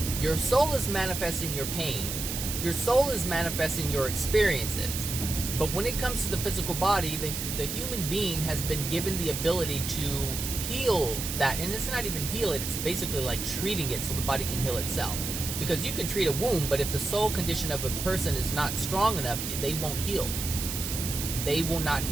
Your soul is manifesting your pain. Your soul is manifesting your experiences. But when it comes to the physical body, the human being has been given the ability to heal that. And it's not even heal it. It's basically like treating it so the body can heal itself. Because you can treat a wound, but if the soul condition of a person is not strong enough, they won't heal. They will not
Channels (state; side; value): noise; right; hiss, 4 dB below the sound